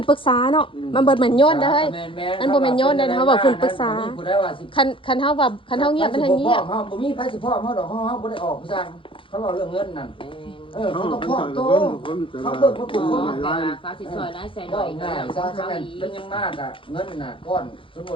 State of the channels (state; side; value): late; right; 0.25 ms